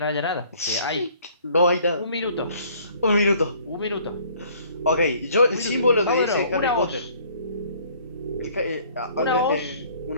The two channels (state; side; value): inverted; both; correlation -0.57